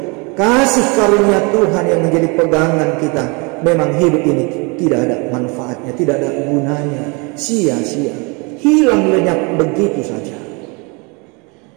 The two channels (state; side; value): quieter; left; 30.2 dB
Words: kasih karunia Tuhan yang menjadi pegangan kita, memang hidup ini tidak ada manfaatnya, tidak ada gunanya, sia-sia, hilang lenyap begitu saja.